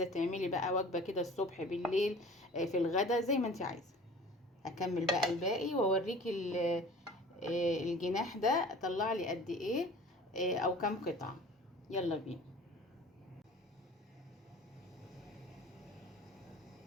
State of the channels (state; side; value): normal; both; correlation 0.44